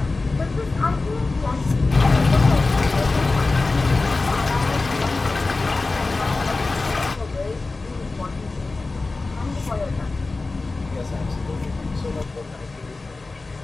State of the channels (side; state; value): right; quieter; 3.5 dB